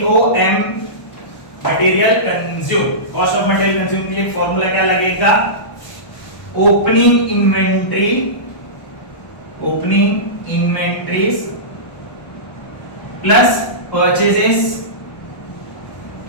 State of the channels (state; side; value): late; right; 1.1 ms